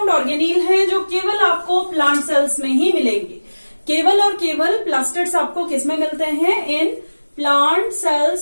ऑर्गेनील है जो केवल आपको प्लांट सेल्स में ही मिलेंगे। केवल और केवल प्लास्टिड्स आपको किस में मिलते हैं? In plant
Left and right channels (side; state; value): both; inverted; correlation -1.00